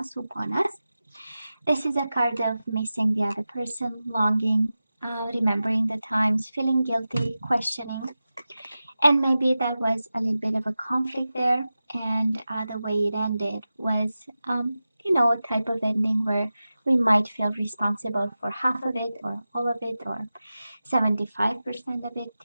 upon us. This is a card of missing the other person, longing, remembering the times, feeling guilty, questioning. And maybe that was a little bit of a conflict there. And the way it ended was, a type of ending where we might feel responsible for half of it or all of it or 75% of it,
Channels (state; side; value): inverted; both; correlation -0.94